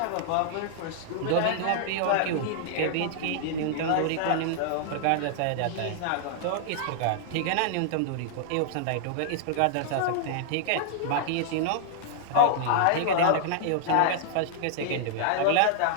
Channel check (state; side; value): different; both; correlation -0.01